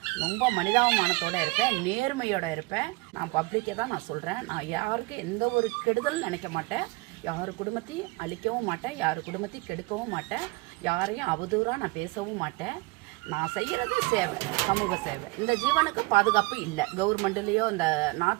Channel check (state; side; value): quieter; left; 25.1 dB